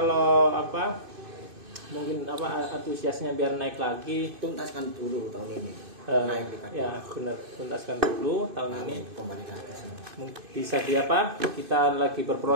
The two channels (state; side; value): late; left; 2.5 ms